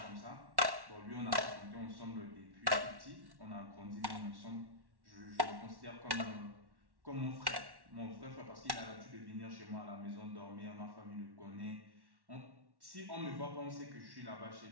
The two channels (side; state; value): left; late; 1.1 ms